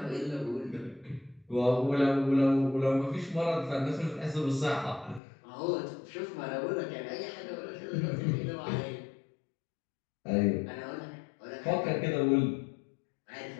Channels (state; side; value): drops out; right; at 5.2 s